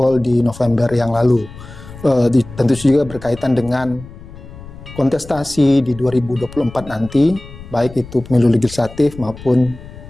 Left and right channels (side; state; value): left; noise; rumble, 16 dB below the sound